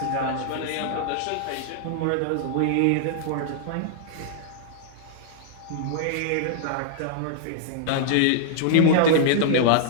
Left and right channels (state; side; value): different; both; correlation -0.01